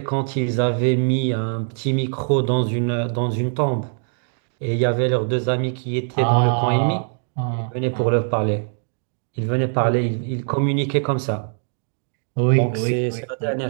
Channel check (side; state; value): left; silent; 61 dB below the other